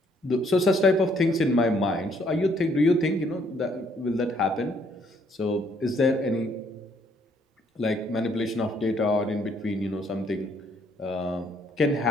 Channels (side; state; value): both; normal; correlation 0.67